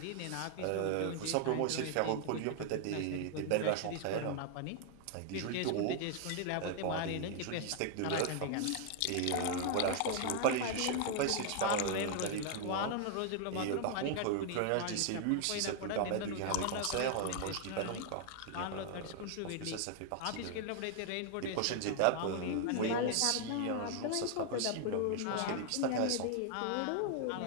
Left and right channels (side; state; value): both; different; correlation 0.00